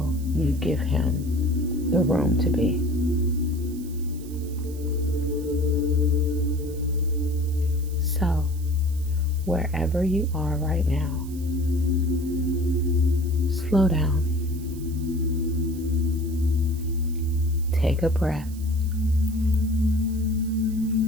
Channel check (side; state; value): right; noise; hiss, 20 dB below the sound